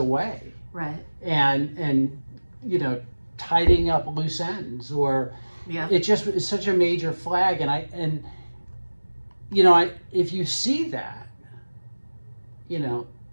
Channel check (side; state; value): both; inverted; correlation -1.00